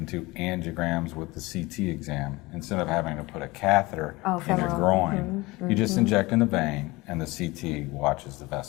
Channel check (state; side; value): quieter; right; 22.0 dB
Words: do angiograms with the CT exam. Instead of having to put a catheter in your groin, you just inject in the vein, and the CT watches the